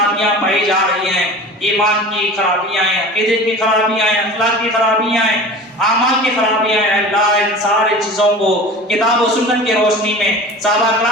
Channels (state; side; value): normal; both; correlation 0.37